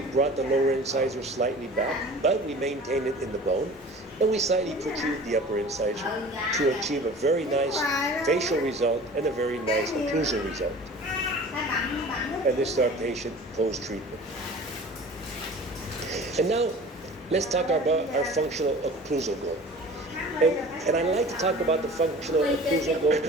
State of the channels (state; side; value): normal; both; correlation 0.42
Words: brought the lower incisor slightly back, but we maintained it in the bone. And we slightly protrude the upper incisor to achieve a very nice facial result and a very nice occlusal result. And this is our patient post-treatment. And now, let's talk about our functional occlusal goal. And I like to talk about the functional occlusal goal